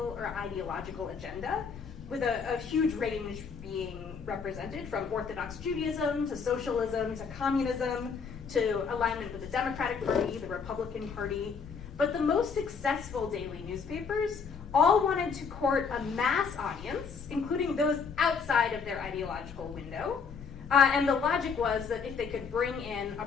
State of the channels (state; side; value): quieter; right; 5.7 dB